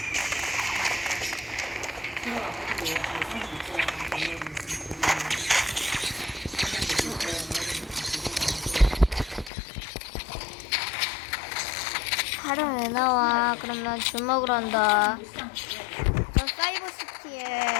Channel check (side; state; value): right; drops out; at 9.5 s